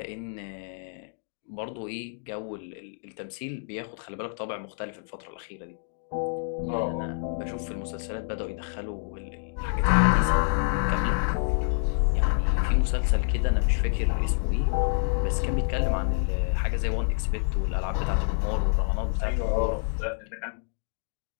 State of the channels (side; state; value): right; silent; digital silence